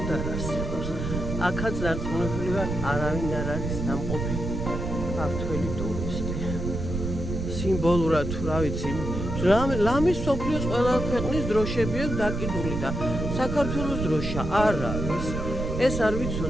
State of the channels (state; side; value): noise; right; rumble, 4 dB below the sound